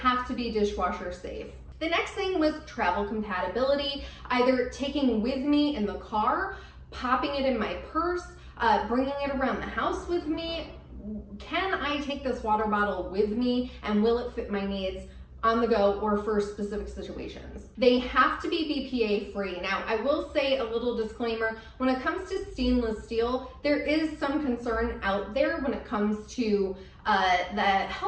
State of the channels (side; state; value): both; identical; correlation 1.00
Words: to be dishwasher safe. The next thing was travel compatibility, either taking with me in the car, popping it in my purse, bringing it around the house with me. Can I take this water bottle with me, and will it fit my needs on the go or for specific situations? They have to be BPA free. Now, I will say a little disclaimer, when it comes to stainless steel, there is some concern out there when it comes to the